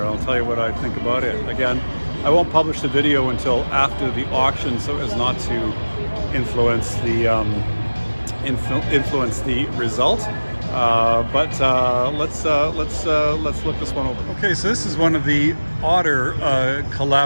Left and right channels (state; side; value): inverted; both; correlation -1.00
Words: I'll tell you what I think about it. Again, I won't publish the video until after the auction, so as not to influence the result. Let's look this one over. Okay, so this is one of the odder